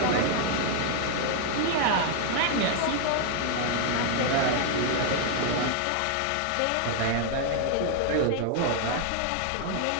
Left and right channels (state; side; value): different; both; correlation 0.00